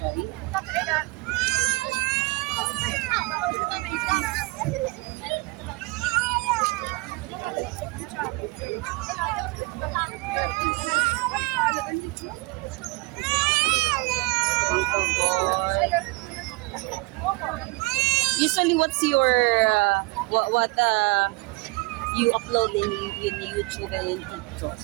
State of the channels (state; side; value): quieter; left; 24.3 dB